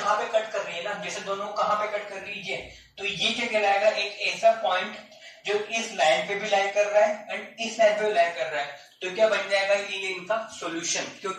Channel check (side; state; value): both; identical; correlation 1.00